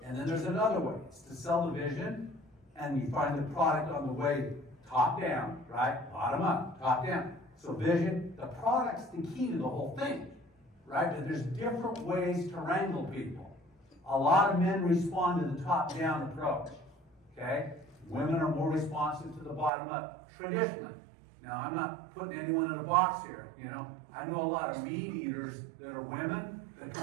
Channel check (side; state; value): left; drops out; at 19.7 s